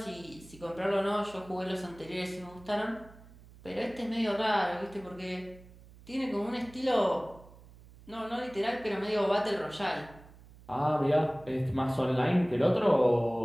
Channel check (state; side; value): noise; right; hum, 22 dB below the sound